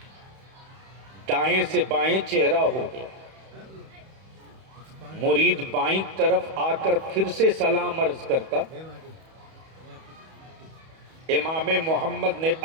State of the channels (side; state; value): left; late; 31 ms